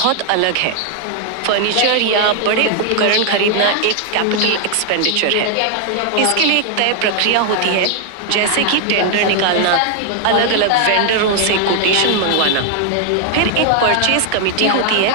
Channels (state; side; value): different; both; correlation 0.00